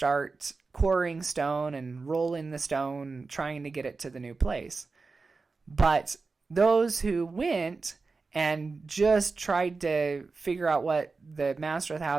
quarrying stone and rolling the stone, trying to get it to the new place. But those who went and just tried to figure out what the master of the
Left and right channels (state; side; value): quieter; left; 4.1 dB